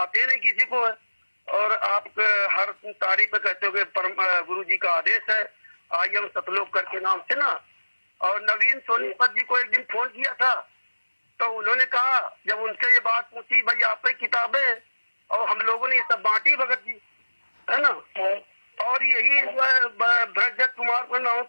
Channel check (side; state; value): both; inverted; correlation -1.00